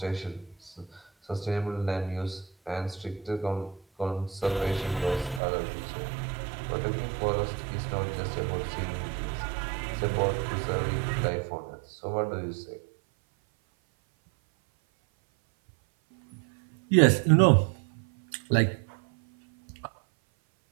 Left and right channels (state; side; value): drops out; left; at 5.4 s